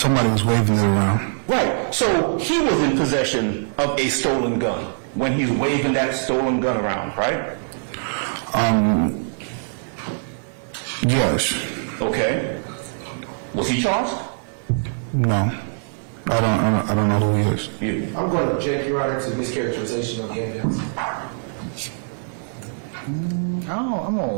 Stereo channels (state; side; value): silent; left; 64 dB below the other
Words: was waving it around. Right. So he was in possession of a stolen gun when he's waving that stolen gun around, right? Yes. Okay. Was he charged? No. I don't know who he is. You. I'm going to object, Your Honor, to mischaracterization of the evidence. I'm gonna